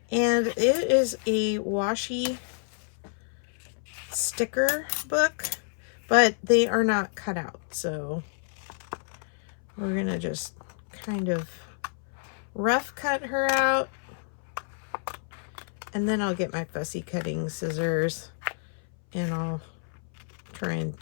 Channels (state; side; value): silent; right; 59 dB below the other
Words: And it is a washi sticker book, but they are not cut out, so we're gonna just kind of rough cut her out, and then I'll get my fussy cutting scissors and I'll try and